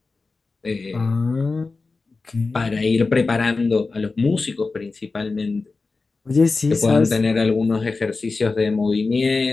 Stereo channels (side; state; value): right; quieter; 4.0 dB